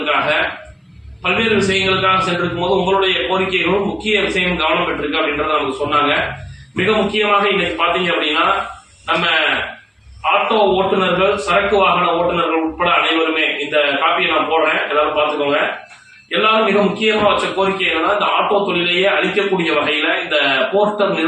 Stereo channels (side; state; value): both; identical; correlation 1.00